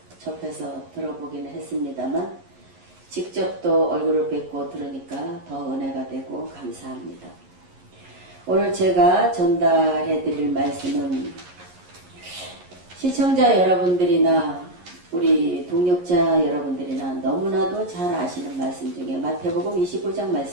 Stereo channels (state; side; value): late; left; 11 ms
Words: 접해서 들어보기는 했습니다만 직접 또 얼굴을 뵙고 들으니까 더 은혜가 되고 감사합니다. 오늘 제가 전달해 드릴 말씀은 시청자 여러분들이나 우리 동역자 여러분들이나 너무나도 잘 아시는 말씀 중에 마태복음 25장